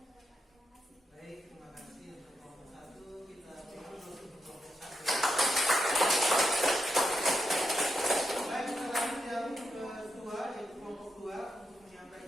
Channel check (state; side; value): normal; both; correlation 0.84